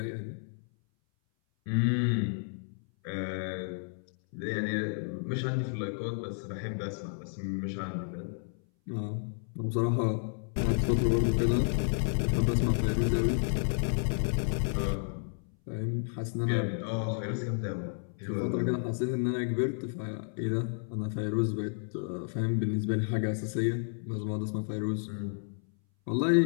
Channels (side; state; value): right; silent; 57 dB below the other